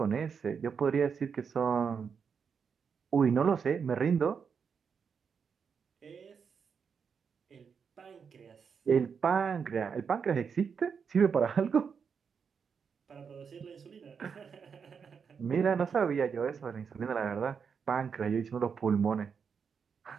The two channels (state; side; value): quieter; left; 6.3 dB